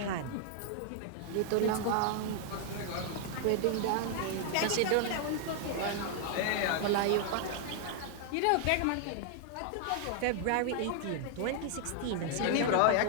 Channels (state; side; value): different; both; correlation 0.00